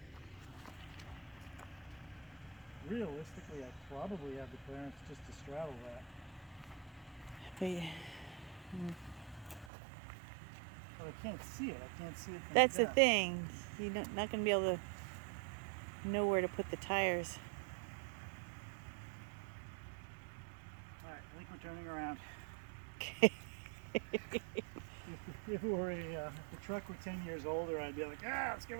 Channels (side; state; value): left; drops out; at 9.7 s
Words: Realistically, I probably have the clearance just to straddle that. But I can't see it. I can't see it from That's there. the thing. You're not going to be able to know where to put the tires. All right, I think we're turning around. Okay. If the truck were 10 years older, I'd be like, let's give